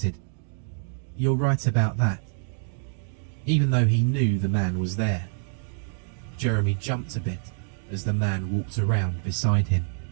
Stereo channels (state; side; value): silent; left; digital silence